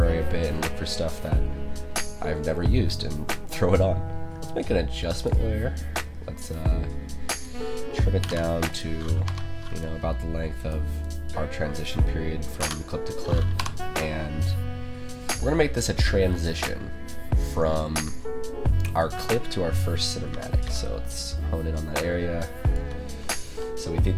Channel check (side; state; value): both; identical; correlation 1.00